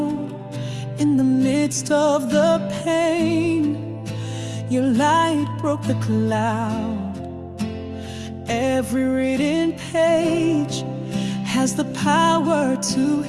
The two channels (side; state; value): both; identical; correlation 1.00